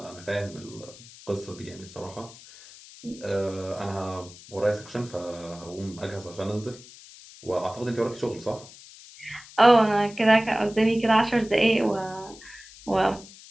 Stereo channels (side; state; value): left; noise; hiss, 19 dB below the sound